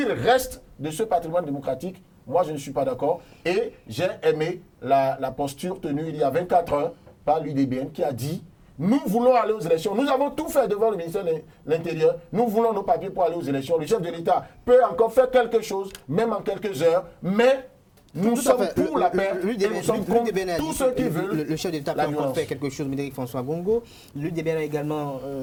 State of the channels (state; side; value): identical; both; correlation 1.00